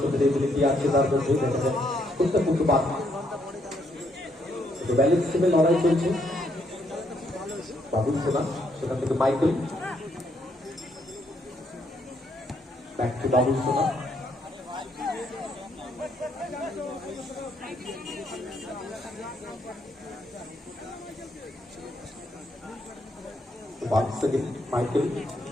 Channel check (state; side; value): normal; both; correlation 0.73